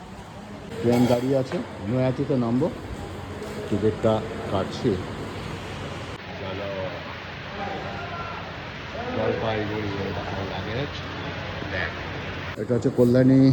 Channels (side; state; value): both; identical; correlation 1.00